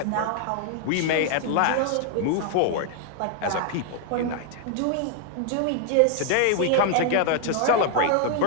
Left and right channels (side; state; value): both; different; correlation 0.00